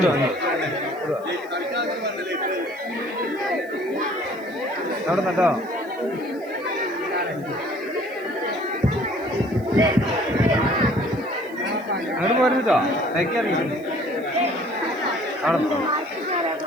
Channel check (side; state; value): right; noise; hiss, 27 dB below the sound